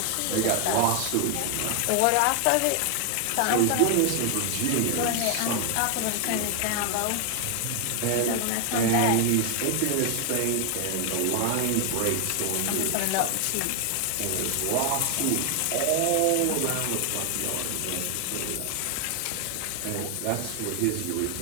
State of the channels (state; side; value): different; both; correlation 0.00